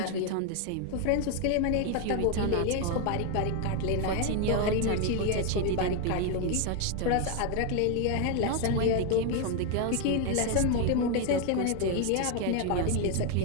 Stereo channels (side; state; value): both; different; correlation 0.01